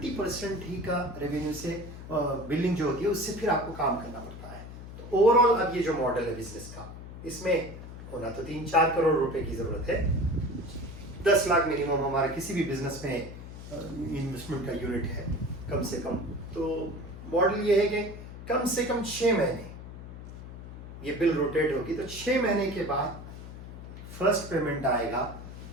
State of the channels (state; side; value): noise; left; hum, 12 dB below the sound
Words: ہی کا ریونیو سے بلنگ جو ہوتی ہے اس سے پھر آپ کو کام کرنا پڑتا ہے۔ تو اوور آل اب یہ جو ماڈل ہے بزنس کا، اس میں ہونا تو 3-4 کروڑ روپے کی ضرورت ہے، 10 لاکھ منیمم ہمارا کسی بھی بزنس میں انویسٹمنٹ کا یونٹ ہے کم سے کم۔ تو ماڈل یہ ہے کہ کم سے کم 6 مہینے یہ بل روٹیٹ ہوگی، تو 6 مہینے کے بعد فرسٹ پیمنٹ آئے گا،